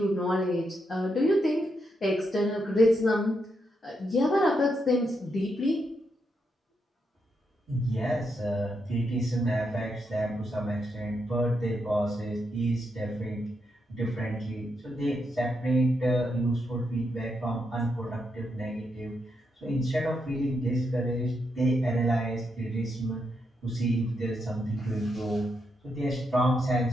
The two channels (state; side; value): normal; both; correlation 0.82